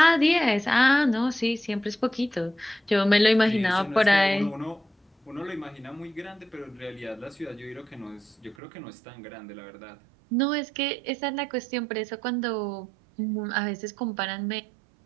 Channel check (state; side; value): drops out; left; at 8.6 s